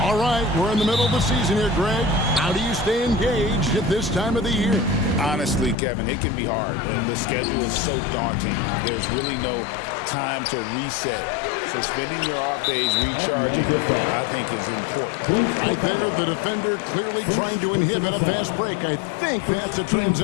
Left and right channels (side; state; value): right; drops out; at 5.8 s